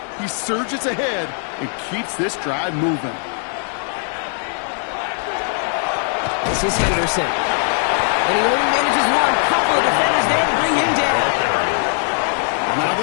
He surges ahead and keeps this drive moving. This is Henderson. And he only manages one. Couple of defenders there to bring him down. Now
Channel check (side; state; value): right; silent; 55 dB below the other